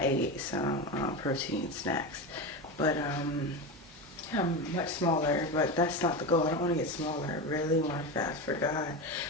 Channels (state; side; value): normal; both; correlation 0.20